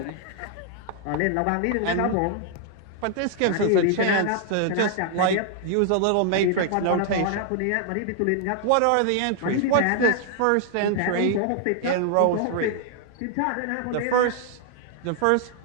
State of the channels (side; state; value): both; different; correlation 0.00